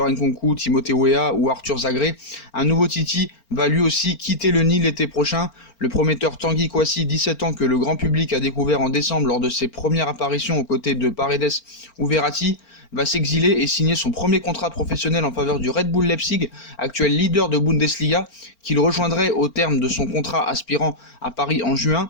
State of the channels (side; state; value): right; late; 4.4 ms